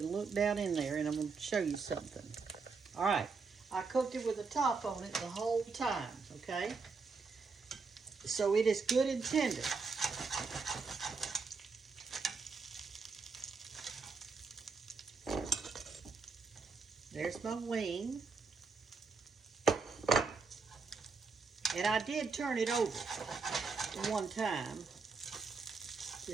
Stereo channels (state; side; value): quieter; left; 4.6 dB